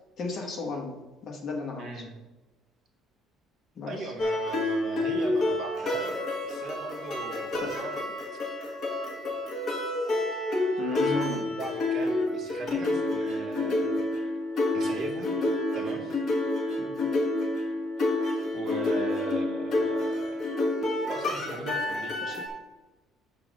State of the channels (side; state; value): both; normal; correlation 0.72